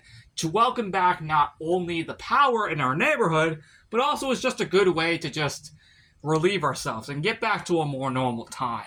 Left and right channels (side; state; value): both; identical; correlation 1.00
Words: to welcome back not only the power in our neighborhood, but also is just a good way to just relieve ourselves and get back to a more normal